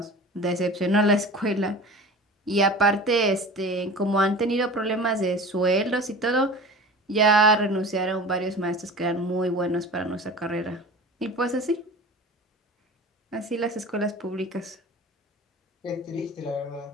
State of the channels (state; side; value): normal; both; correlation 0.37